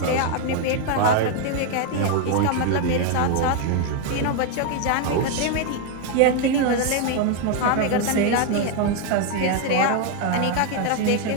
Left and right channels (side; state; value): both; different; correlation 0.01